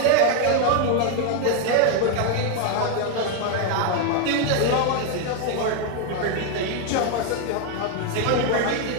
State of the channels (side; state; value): both; different; correlation 0.01